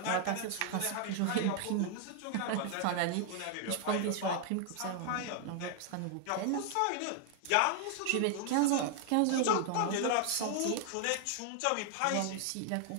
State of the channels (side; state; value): both; different; correlation 0.00